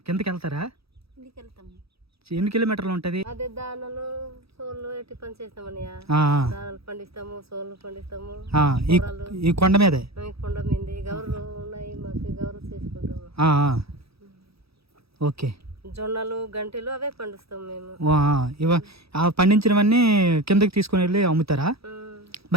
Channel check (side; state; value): left; late; 0.77 ms